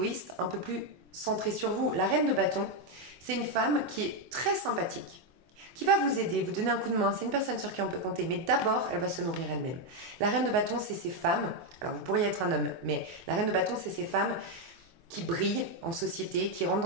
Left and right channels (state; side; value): late; left; 24 ms